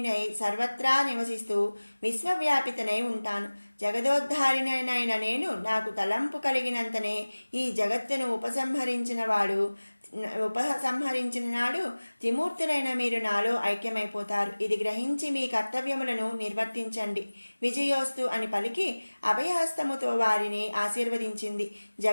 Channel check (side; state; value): both; inverted; correlation -1.00